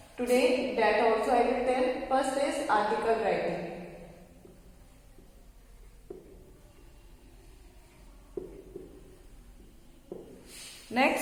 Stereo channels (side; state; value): both; identical; correlation 1.00